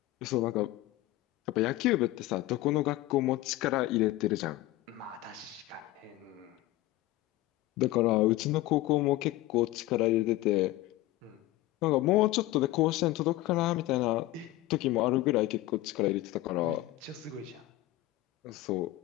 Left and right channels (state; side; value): quieter; right; 16.8 dB